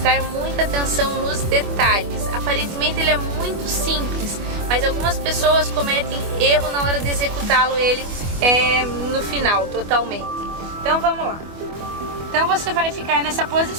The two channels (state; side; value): late; left; 25 ms